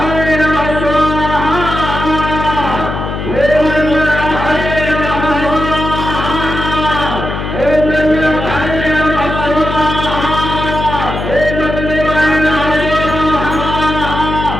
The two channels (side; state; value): left; noise; hum, 5 dB below the sound